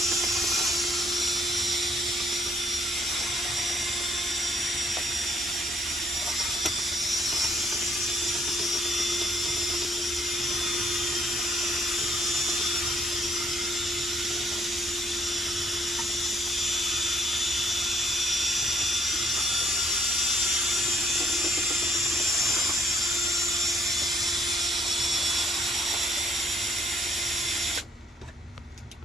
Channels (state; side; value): normal; both; correlation 0.66